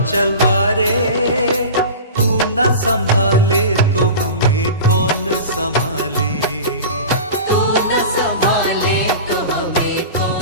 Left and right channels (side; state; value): both; inverted; correlation -0.33